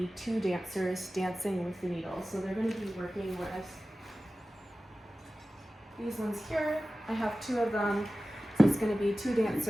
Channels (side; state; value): both; normal; correlation 0.96